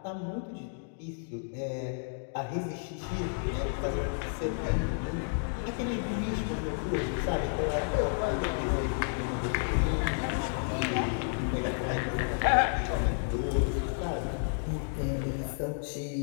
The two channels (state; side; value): silent; right; digital silence